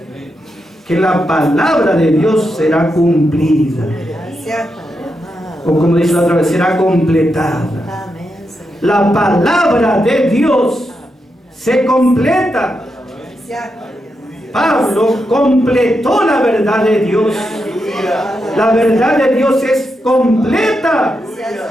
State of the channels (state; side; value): normal; both; correlation 0.85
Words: Que la palabra de Dios será cumplida. O como dice la otra vez, será completada. La palabra de Dios se completa. Pablo completó la verdad de Dios. La verdad de Dios es completa.